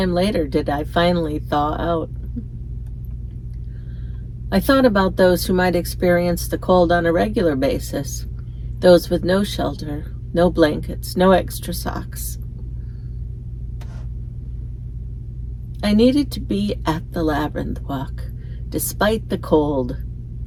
later did I finally thaw out. I thought about those who might experience the cold on a regular basis, those with no shelter, no blankets, no extra socks. I needed to be at the labyrinth walk, despite the cold.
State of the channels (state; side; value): identical; both; correlation 1.00